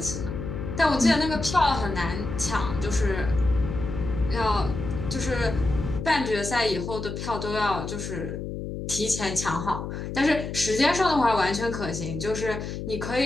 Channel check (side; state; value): left; noise; hum, 6 dB below the sound